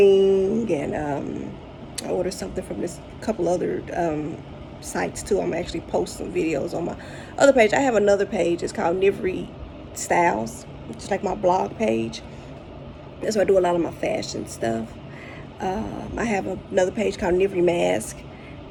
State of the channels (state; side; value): identical; both; correlation 1.00